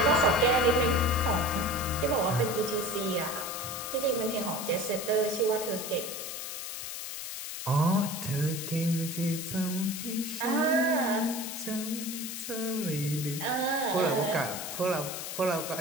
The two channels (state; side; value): noise; left; hiss, 6 dB below the sound